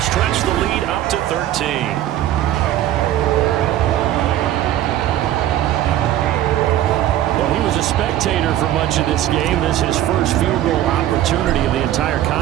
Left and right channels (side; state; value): left; quieter; 12.7 dB